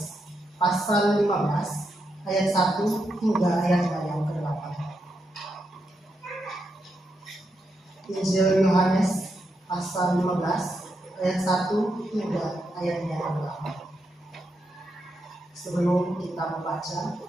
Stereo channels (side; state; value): both; normal; correlation 0.83